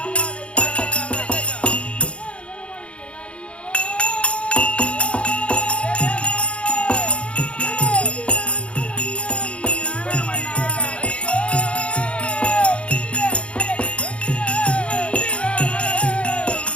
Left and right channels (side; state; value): right; late; 0.060 ms